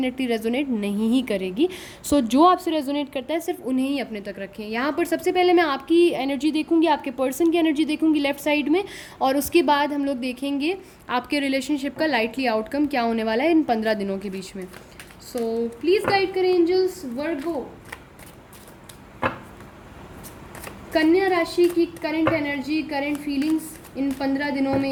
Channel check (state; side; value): identical; both; correlation 1.00